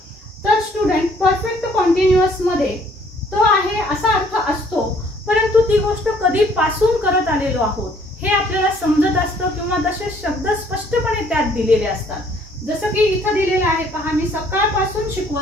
तर स्टुडंट परफेक्ट कंटिन्युअस मध्ये तो आहे असा अर्थ असतो, परंतु ती गोष्ट कधीपासून करत आलेलो आहोत हे आपल्याला समजत असतं किंवा तसे शब्द स्पष्टपणे त्यात दिलेले असतात. जसं की इथं दिलेलं आहे पहा, मी सकाळपासून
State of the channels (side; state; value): both; normal; correlation 0.61